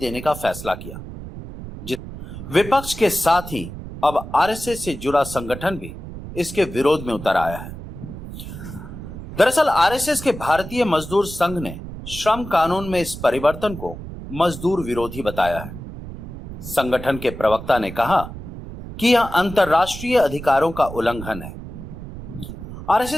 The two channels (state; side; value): noise; right; rumble, 11 dB below the sound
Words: का फैसला किया। विपक्ष के साथ ही अब आरएसएस से जुड़ा संगठन भी इसके विरोध में उतर आया है। दरअसल आरएसएस के भारतीय मजदूर संघ ने श्रम कानून में इस परिवर्तन को मजदूर विरोधी बताया है। संगठन के प्रवक्ता ने कहा कि यह अंतर्राष्ट्रीय अधिकारों का उल्लंघन है।